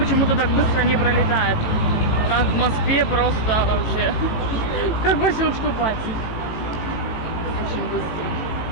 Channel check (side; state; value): right; late; 18 ms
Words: так быстро не пролетает. Как в Москве просто вообще. Как по щелчку пальцев. Очень быстро.